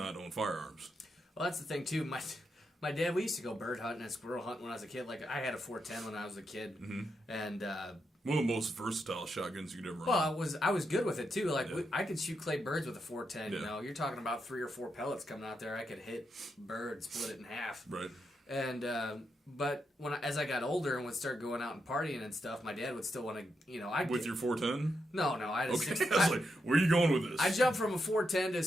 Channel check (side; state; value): both; normal; correlation 0.84